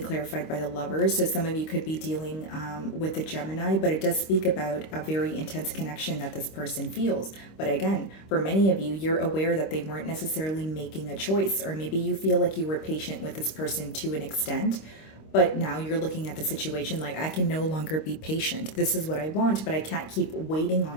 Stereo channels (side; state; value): right; late; 26 ms